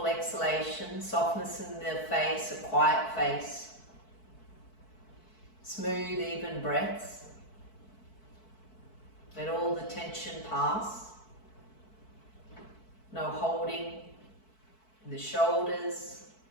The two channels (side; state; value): right; late; 4.6 ms